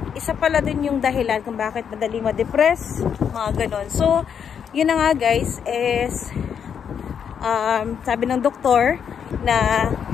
isa pala din yung dahilan kung bakit madali ma-depress, mga ganon. So yun na nga guys, is sabi ng doktor na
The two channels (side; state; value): right; quieter; 7.6 dB